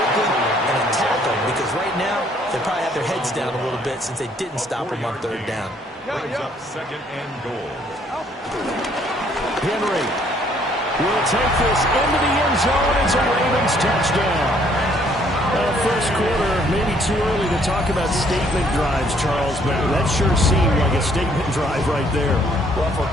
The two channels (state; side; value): normal; both; correlation 0.64